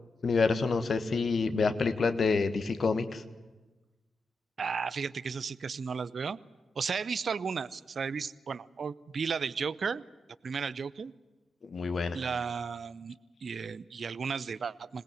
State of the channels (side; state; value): both; normal; correlation 0.84